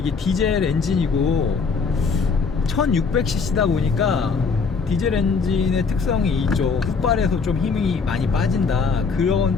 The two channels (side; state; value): right; quieter; 5.0 dB